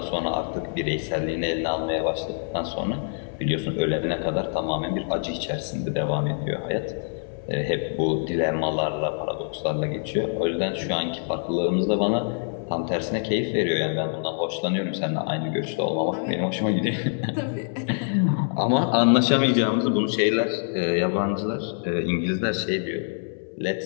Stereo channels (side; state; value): right; silent; 62 dB below the other